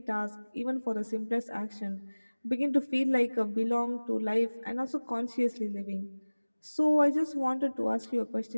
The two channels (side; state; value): both; inverted; correlation -1.00